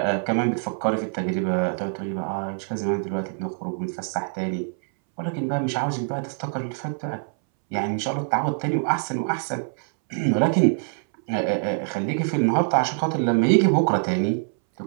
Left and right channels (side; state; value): left; silent; 62 dB below the other